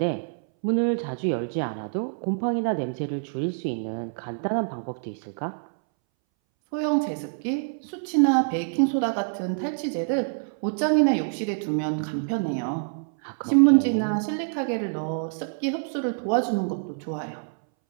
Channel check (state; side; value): silent; left; 61 dB below the other